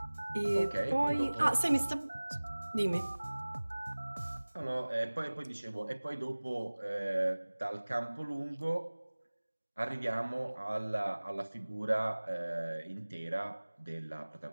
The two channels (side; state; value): both; inverted; correlation -1.00